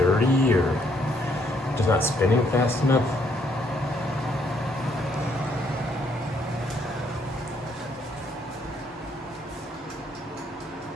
or just not spinning fast enough.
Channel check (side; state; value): both; normal; correlation 0.70